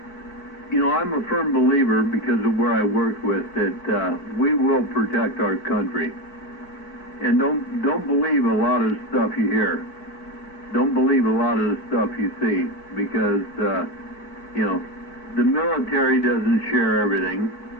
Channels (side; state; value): right; late; 4.6 ms